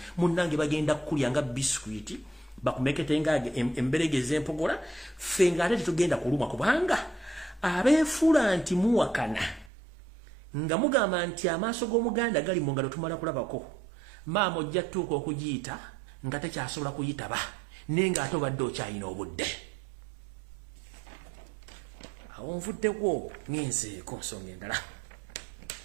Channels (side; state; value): left; drops out; at 9.7 s